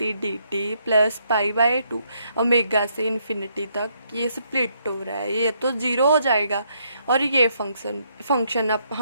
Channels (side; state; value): both; inverted; correlation -0.73